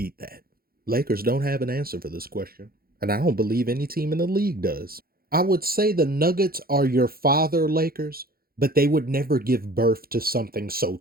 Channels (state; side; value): late; left; 0.43 ms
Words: that? Lakers don't have an answer for this question, and I don't believe any team in the league does. I would say the Nuggets are your father Lakers, but they would never give birth to something so